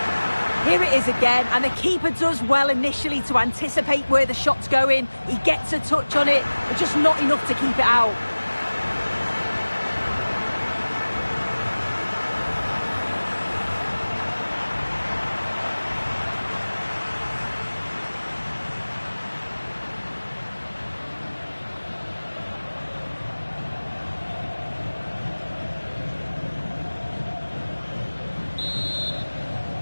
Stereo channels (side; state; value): both; inverted; correlation -1.00